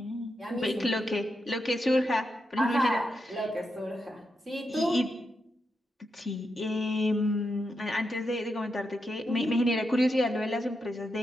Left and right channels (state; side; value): normal; both; correlation 0.85